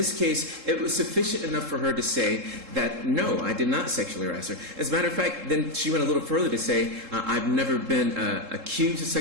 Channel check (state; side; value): late; left; 3.7 ms